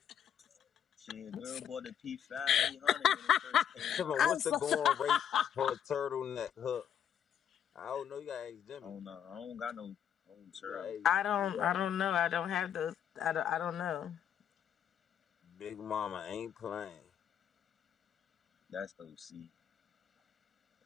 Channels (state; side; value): quieter; right; 9.0 dB